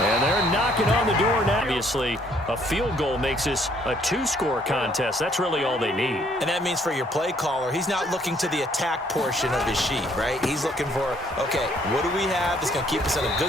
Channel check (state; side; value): normal; both; correlation 0.65